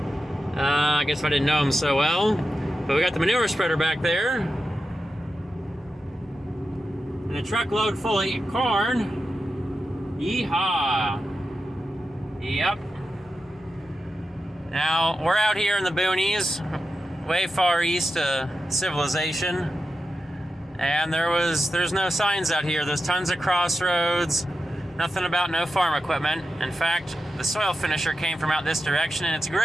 guess I didn't know him so well. But we got the manure spreader back there. And a truckload full of corn. Yeehaw. Yep. Now, we're out here in the boonies, way far east of civilization. And there's no signs out here. There's tons of crossroads. Nothing about no farm equipment. In fact, the soil finisher came from out this direction, and it's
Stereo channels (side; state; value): both; normal; correlation 0.90